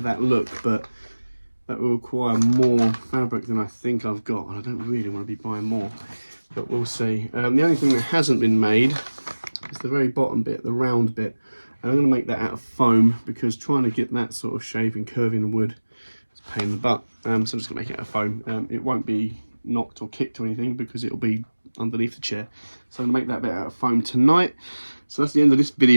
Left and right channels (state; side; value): inverted; both; correlation -1.00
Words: look, but that will require more fabric than I think I've got, and I don't really want to be buying more, but we'll see. The only thing that hasn't been made is the very bottom bit, the round bit, and I'm going to make that out of foam, because trying to get that sort of shape and curve in wood is a pain in the butt. So I'm just going to make it out of foam. It won't be knocked or kicked or anything, because it'll be underneath the chair. So I'm going to make that bit out of foam tonight. So that's the end of this